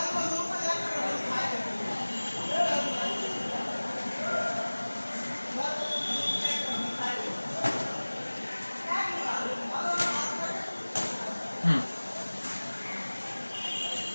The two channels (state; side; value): inverted; both; correlation -1.00